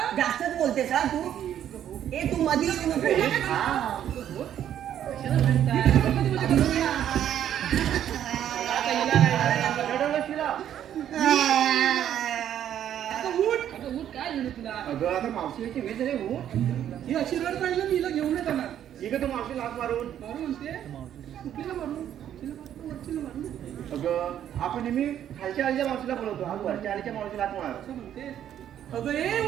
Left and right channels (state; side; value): quieter; left; 10.4 dB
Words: जास्तच बोलतेस हा तू. ए तू मधी येऊ नको. कशाला म्हणताय? आता हिला काय रडवलं शिला. आता उठ. अगं उठ काय झालं तुला. अगं आता मावशीची वेळ झाली हो. ही अशी रड पाहिजे मी हिला घेऊन येत येणार. ठीक आहे तू मावशी लाग मारून. मारू म्हणते कुठलीला मारू तिला मारू, वरचीला मारू अगं आपण नेहमी खालच्या आलीच्या मावशीला बोलवतो, आज वरच्या आलीच्या मावशीला लाग मार. असं म्हणते. अगं ए